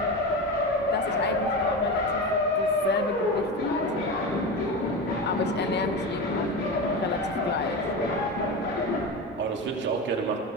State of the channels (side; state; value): both; normal; correlation 0.23